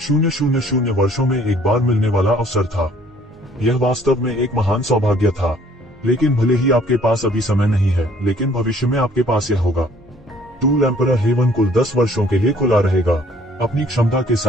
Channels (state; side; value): normal; both; correlation 0.58